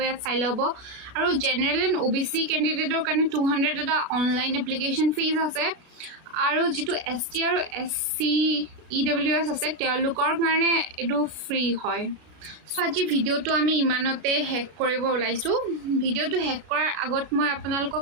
ইয়াত চাই ল'ব। আৰু জেনেৰেল এণ্ড OBC কেণ্ডিডেটৰ কাৰণে 200 এটা অনলাইন এপ্লিকেশ্যন ফিজ আছে। আৰু যিটো ST আৰু SC EWS আছে তেওঁলোকৰ কাৰণে এইটো ফ্ৰী হয়। সো আজি ভিডিঅ'টো আমি ইমানতে শেষ কৰিব ওলাইছোঁ ভিডিঅ'টো শেষ কৰাৰ আগত মই আপোনালোকক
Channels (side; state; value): left; late; 33 ms